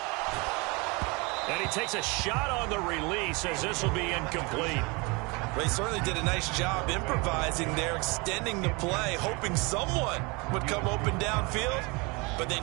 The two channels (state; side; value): quieter; left; 27.7 dB